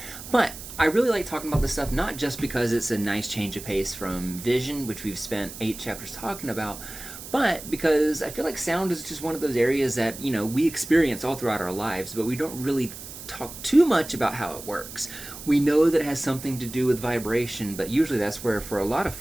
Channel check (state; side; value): noise; right; hiss, 13 dB below the sound